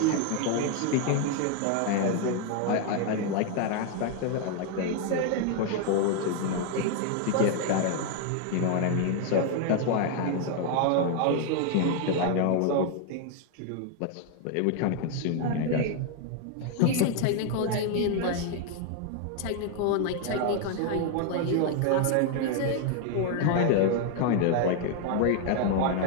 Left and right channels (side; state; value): both; different; correlation 0.00